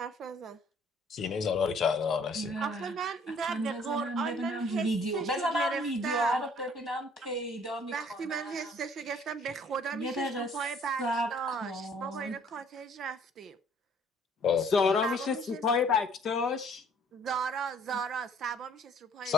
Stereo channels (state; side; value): normal; both; correlation 0.58